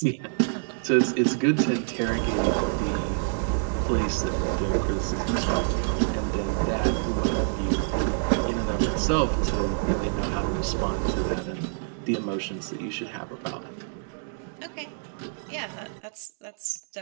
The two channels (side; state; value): left; silent; digital silence